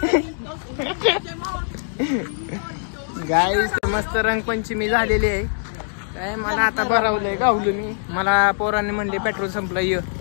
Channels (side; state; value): right; silent; digital silence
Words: गाईस मस्त रंगपंचमी झालेली आहे. काय मला आता भरवलंय गावलो मी. मला पोरांनी म्हणले पेट्रोल संपलं ये